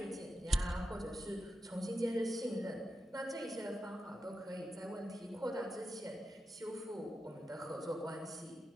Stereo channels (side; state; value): both; normal; correlation 0.89